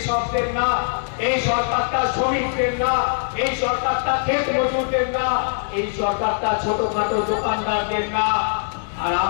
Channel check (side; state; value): right; silent; 64 dB below the other